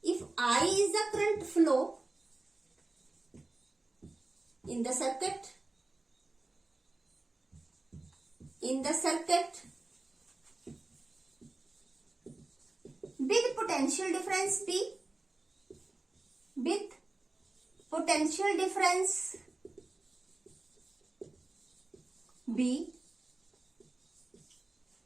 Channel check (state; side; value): quieter; left; 3.0 dB